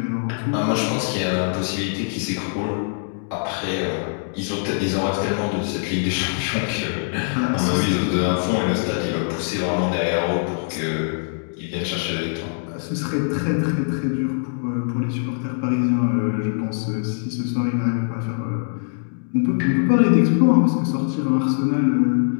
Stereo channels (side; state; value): right; silent; digital silence